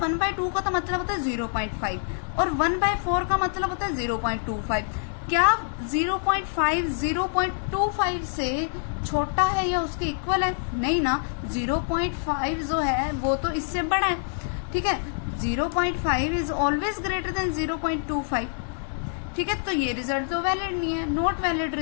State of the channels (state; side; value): silent; right; digital silence